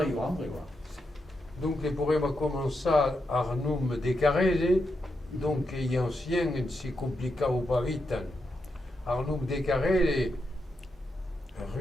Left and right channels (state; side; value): normal; both; correlation 0.85